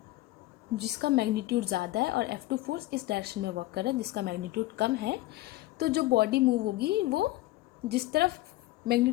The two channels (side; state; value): right; quieter; 17.6 dB